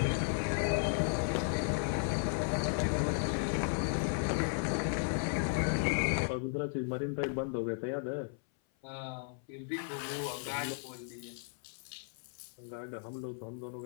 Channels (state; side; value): silent; right; 54 dB below the other